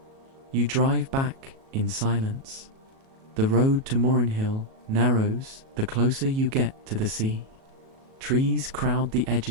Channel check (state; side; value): late; left; 37 ms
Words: You drive back in silence. The road to Morrenhill narrows the closer you get to the sea. Trees crowd the